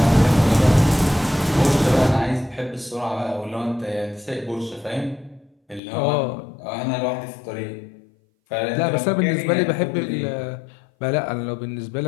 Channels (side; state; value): right; drops out; at 5.8 s